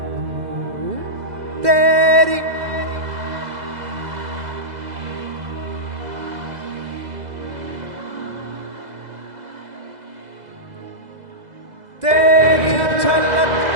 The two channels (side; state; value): left; late; 2.0 ms